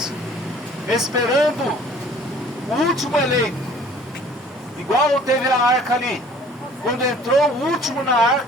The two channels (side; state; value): both; normal; correlation 0.52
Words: esperando o último eleito. Igual teve a arca ali. Quando entrou o último na